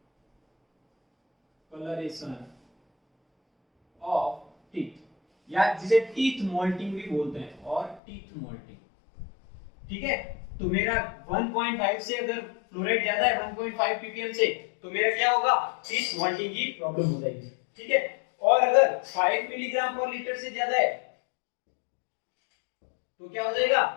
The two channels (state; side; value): drops out; right; at 8.0 s